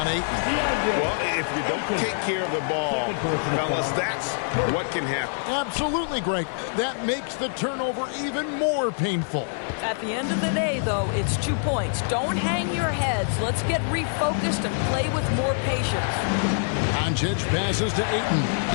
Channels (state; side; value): silent; right; 62 dB below the other